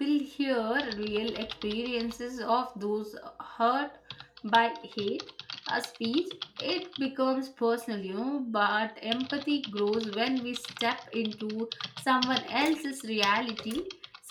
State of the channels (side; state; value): both; identical; correlation 1.00